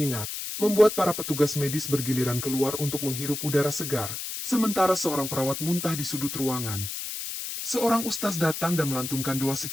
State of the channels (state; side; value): noise; left; hiss, 6 dB below the sound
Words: membuat para petugas medis bergiliran keluar untuk menghirup udara segar, sementara seorang perawat muntah di sudut ruangan. Seorang ustaz datang dan melantunkan doa